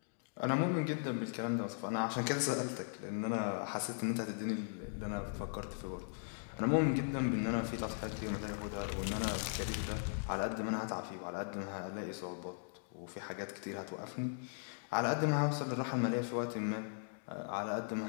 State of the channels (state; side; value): silent; right; digital silence